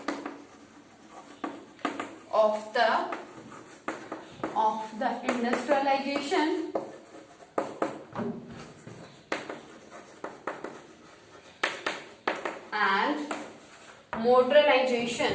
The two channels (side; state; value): both; identical; correlation 1.00